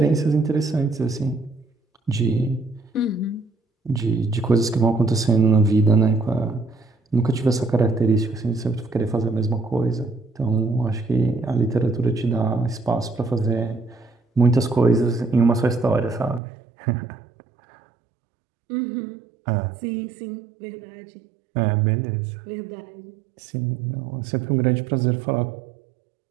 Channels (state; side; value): drops out; left; at 16.4 s